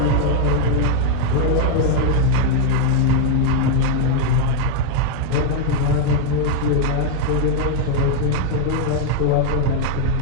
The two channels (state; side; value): different; both; correlation 0.00